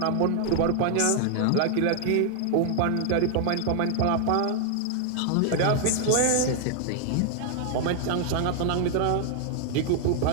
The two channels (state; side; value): different; both; correlation 0.00